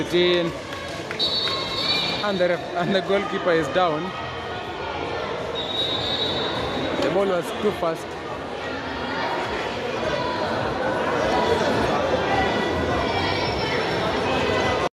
in. And the goalkeeper is down. The ball was too fast.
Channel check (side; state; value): both; identical; correlation 1.00